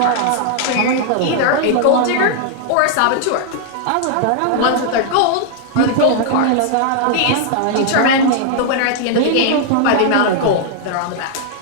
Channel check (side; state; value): both; different; correlation -0.01